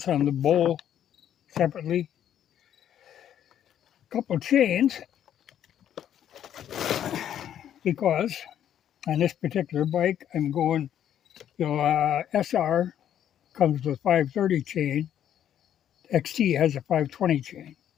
on the bowl separately. A couple chains, because on this particular bike I'm going, SR comes with 530 chain, XT has a 520 chain.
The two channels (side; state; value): right; quieter; 10.2 dB